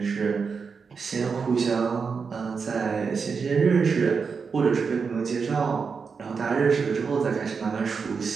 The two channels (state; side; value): quieter; left; 5.4 dB